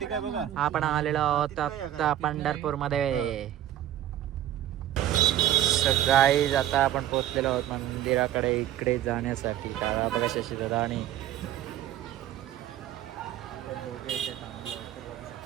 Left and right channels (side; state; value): left; quieter; 12.2 dB